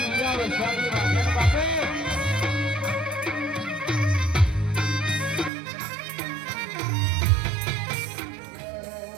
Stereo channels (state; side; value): drops out; left; at 5.5 s